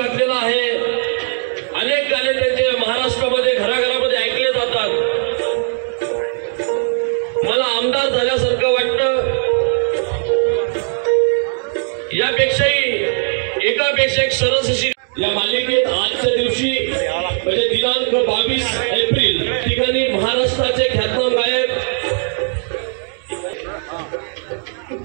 आहे। अनेक गाणे त्यांचे महाराष्ट्रामध्ये घराघरामध्ये ऐकले जातात। मला आमदार झाल्यासारखं वाटतं। यापेक्षाही एकापेक्षा एक सरस अशी या मालिकेत आजच्या दिवशी म्हणजे दिनांक 22 एप्रिल ठिकाणी महाराष्ट्राचे ख्यातनाम गायक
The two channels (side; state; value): left; silent; 56 dB below the other